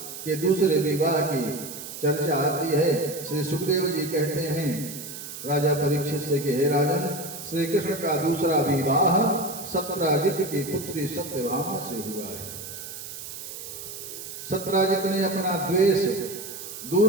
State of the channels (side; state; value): right; noise; hiss, 10 dB below the sound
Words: के दूसरे विवाह की चर्चा आती है। श्री सुखदेव जी कहते हैं राजा परीक्षित से कि हे राजन, श्री कृष्ण का दूसरा विवाह सत्राजित की पुत्री सत्यभामा से हुआ है। सत्राजित ने अपना द्वेष